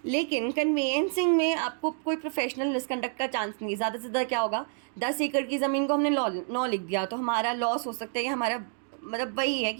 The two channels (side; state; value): left; silent; 59 dB below the other